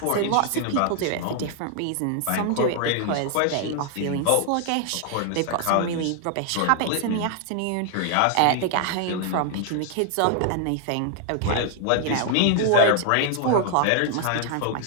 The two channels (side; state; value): both; different; correlation 0.00